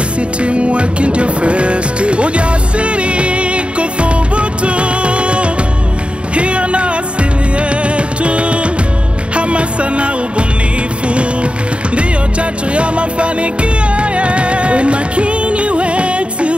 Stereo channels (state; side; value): late; left; 0.058 ms